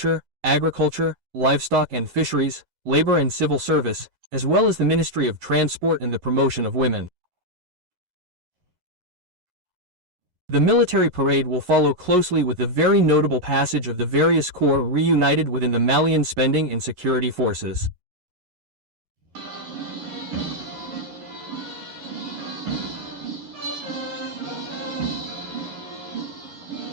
agriculture, livestock and fisheries, labor and civil service, as well as the Ministry of Transport and the promotion of women. The military parade will follow closely with the very notable passage of the various corps reunited within the Malian Spending and Security Forces.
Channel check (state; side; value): late; left; 11 ms